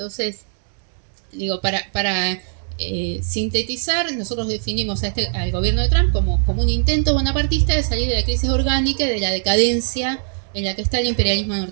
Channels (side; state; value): left; silent; digital silence